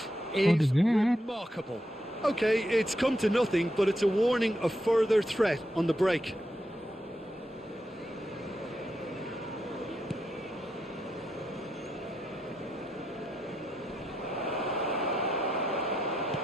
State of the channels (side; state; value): both; normal; correlation 0.82